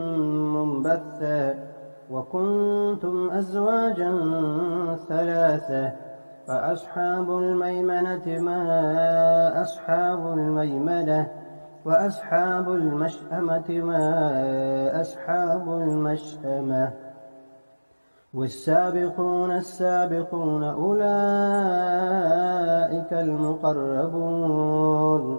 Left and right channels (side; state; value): both; inverted; correlation -1.00